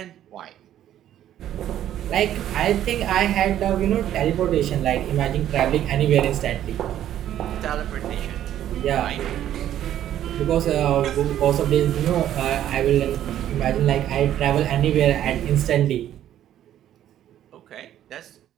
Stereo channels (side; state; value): left; quieter; 11.6 dB